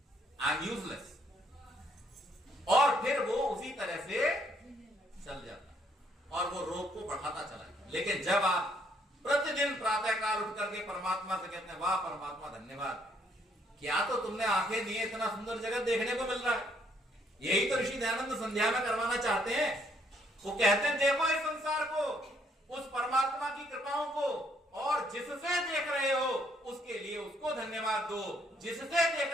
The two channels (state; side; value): normal; both; correlation 0.69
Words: आई एम यूजलेस, और फिर वो उसी तरह से चल जाता है और वो रोग को बढ़ाता चला जाता। लेकिन जब आप प्रतिदिन प्रातःकाल उठ करके परमात्मा से कहते हैं वाह परमात्मा धन्यवाद, क्या तो तुमने आंखें दी, इतना सुंदर जगत देखने को मिल रहा है। यही तो ऋषि दयानंद संध्या में करवाना चाहते हैं। वो कहते हैं देखो इस संसार को, उस परमात्मा की कृपाओं को, और जिससे देख रहे हो उसके लिए उसको धन्यवाद दो, जिससे